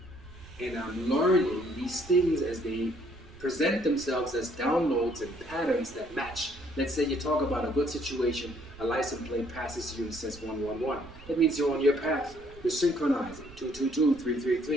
And I'm learning these things as they present themselves as downloads and patterns that match. Let's say you talk about a good situation, a license plate passes you and says 111. That means you're on your path. You're synchronizing. 222,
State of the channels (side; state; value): right; noise; rumble, 20 dB below the sound